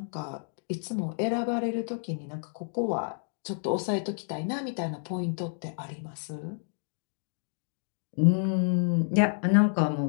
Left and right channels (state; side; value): silent; right; digital silence